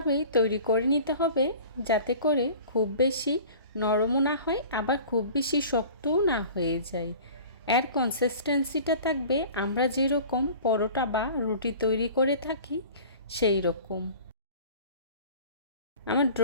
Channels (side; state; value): both; inverted; correlation -0.43